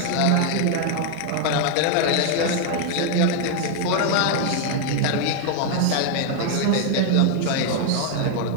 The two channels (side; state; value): both; different; correlation 0.00